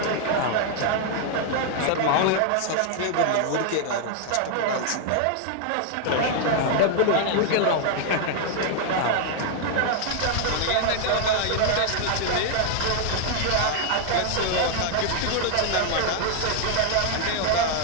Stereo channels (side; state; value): both; different; correlation 0.00